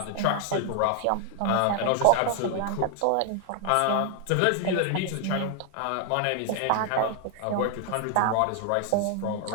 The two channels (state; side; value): different; both; correlation 0.00